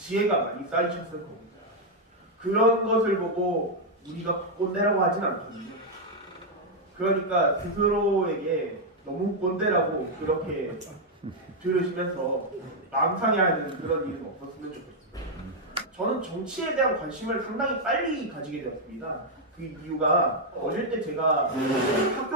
많이 쌓이셨을 겁니다. 그런 것을 보고 우리가 꼰대라고 하진 않거든요. 그러니까 스스로에게 너무 꼰대라고 그렇게 들으시면서 마음 상해하는 그런 일은 없었으면 좋겠습니다. 저는 정치에 대한 관심을 상당히 빨리 가지게 되었습니다. 그 이유가 어릴 때 제가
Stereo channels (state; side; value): normal; both; correlation -0.01